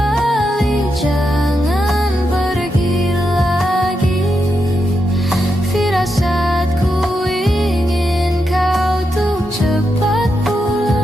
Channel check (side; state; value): both; normal; correlation 0.85